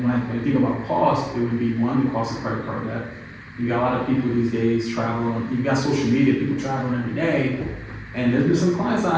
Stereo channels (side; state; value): both; identical; correlation 1.00